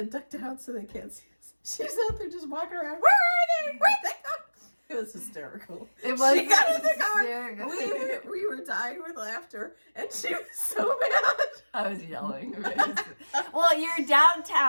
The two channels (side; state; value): both; inverted; correlation -1.00